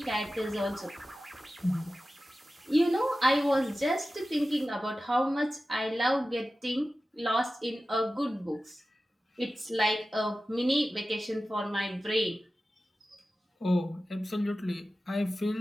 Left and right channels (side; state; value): both; normal; correlation 0.94